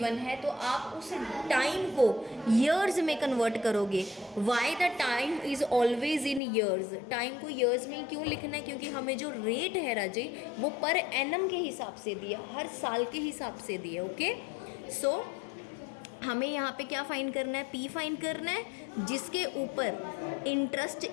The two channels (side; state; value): right; drops out; at 6.4 s